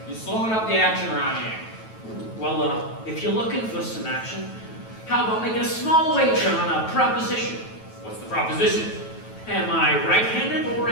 You're slowing up the action around here. Well, if you're looking for some action, how about making a small wager on a proposition? What's the proposition? Am I right-handed or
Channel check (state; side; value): late; right; 9.1 ms